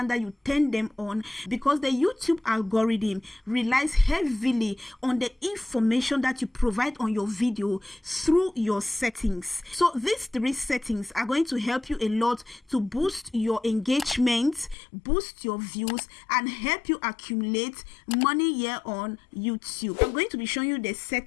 that you turn them on, because the YouTube algorithm relies heavily on the information that you provide on your video through your settings. So these 3 settings are going to help you a lot to boost your engagement, boost your views, and help you accumulate money here on YouTube. I'm going to be showing you the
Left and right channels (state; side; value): drops out; right; at 14.8 s